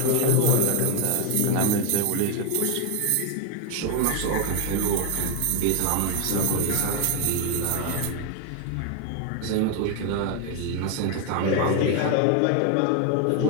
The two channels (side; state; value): both; different; correlation 0.01